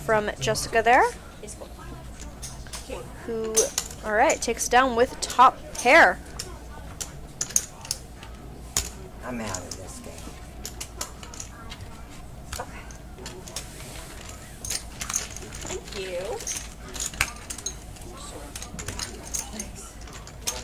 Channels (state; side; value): identical; both; correlation 1.00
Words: from Jessica there, who, alright, takes down with top pair. I'm out of this game. Thank you.